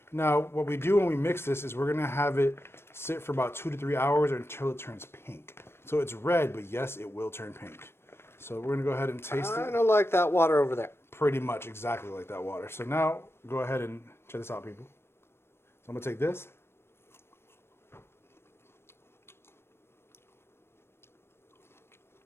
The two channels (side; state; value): right; late; 0.12 ms